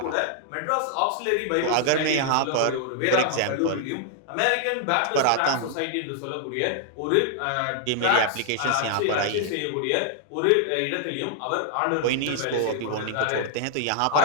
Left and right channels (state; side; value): different; both; correlation 0.00